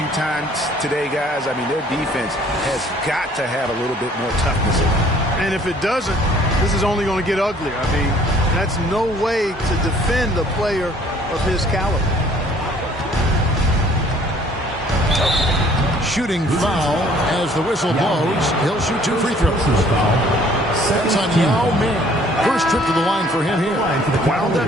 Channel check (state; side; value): normal; both; correlation 0.57